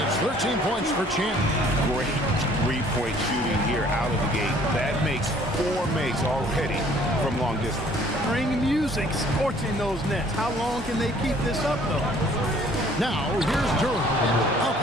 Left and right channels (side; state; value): both; normal; correlation 0.57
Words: it's 13 points for Champ. Great three-point shooting here out of the gate. That makes 4 makes already from long distance. Ring music scorching those nets. How long can they keep this up, though? Now, here's Durham. Up